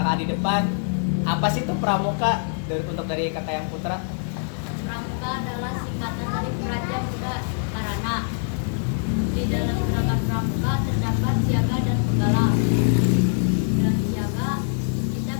di depan, apa sih itu Pramuka untuk dari kakak yang putra? Pramuka adalah singkatan dari Praja Muda Karana. Di dalam gerakan Pramuka terdapat siaga dan penggalang. Dalam siaga kita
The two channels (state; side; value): silent; right; digital silence